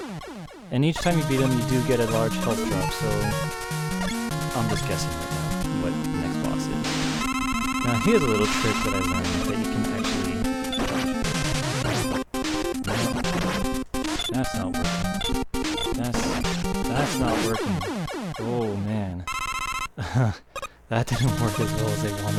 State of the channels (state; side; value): identical; both; correlation 1.00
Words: And each time you beat him, you do get a large health drop, so I'm just guessing right now what the next boss is. Now, here's a little trick that I learned that you can actually... No, that's not working. That's not working. Oh, man. That didn't work as well as I